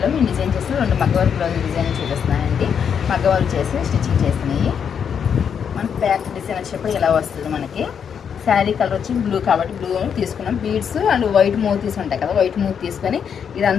మేము డిజైన్ చేసిన 2 మగ్గ వర్క్ బ్లౌజ్ డిజైన్ చూపిస్తున్నానండి. మగ్గ వర్క్ చేసి స్టిచ్చింగ్ చేసినాయి. మనకి బ్యాక్ డిజైన్ వచ్చేటప్పుడు ఇలా వస్తుంది. మనకి శారీ కలర్ వచ్చి బ్లూ కాబట్టి బ్లూ తీసుకున్నాం. బీడ్స్ అండ్ వైట్ మూతీస్ ఉంటాయి కదా, వైట్ మూత్ తీసుకొని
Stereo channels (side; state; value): right; quieter; 7.5 dB